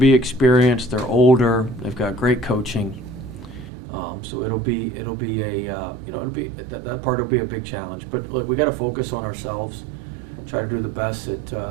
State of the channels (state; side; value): drops out; left; at 3.7 s